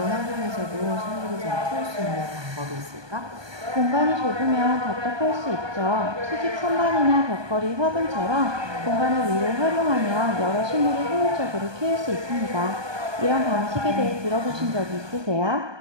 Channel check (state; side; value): late; left; 1.2 ms